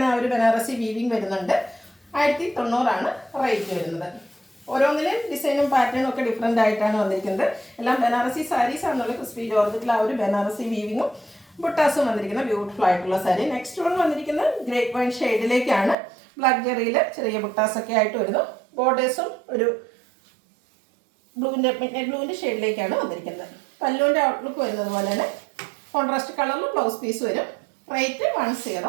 ആ ഒരു ബനാറസി വീവിങ് വരുന്നുണ്ട്. 1090 റേറ്റ് വരുന്നത്. ഓരോന്നിലും ഡിസൈനും പാറ്റേണും ഒക്കെ ഡിഫറെൻ്റ് ആയിട്ടാണ് വന്നിരിക്കുന്നത്. എല്ലാം ബനാറസി സാരീസ് ആണെന്നുള്ള ക്രിസ്പി ജോർജറ്റിൽ ആ ഒരു ബനാറസി വീവിങ്ങും ബുട്ടാസും വന്നിരിക്കുന്ന ബ്യൂട്ടിഫുൾ ആയിട്ടുള്ള സാരി. നെക്സ്റ്റ് വൺ വന്നിരിക്കുന്നത് ഗ്രേപ്പ് വൈൻ ഷെയ്ഡിലേക്കാണ്. ബ്ലാക്ക് ജെറിയിൽ ചെറിയ ബുട്ടാസൊക്കെ ആയിട്ട് വരുന്നു. ബോർഡേഴ്സും ഒരു ബ്ലൂവിൻ്റെ ഷെയ്ഡിലേക്കാണ് വന്നിരിക്കുന്നത്. പല്ലുവിൻ്റെ ഔട്ട്ലുക്ക് വരുന്നത് പോലെ തന്നെ കോൺട്രാസ്റ്റ് കളറിൽ ബ്ലൗസ് പീസ് വരും. റേറ്റ്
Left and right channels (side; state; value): left; drops out; at 16.0 s